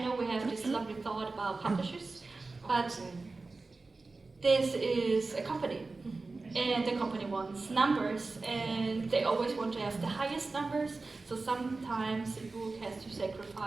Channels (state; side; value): quieter; left; 3.6 dB